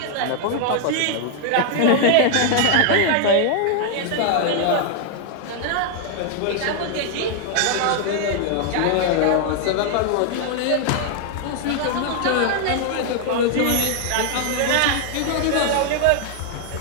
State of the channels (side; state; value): both; different; correlation 0.00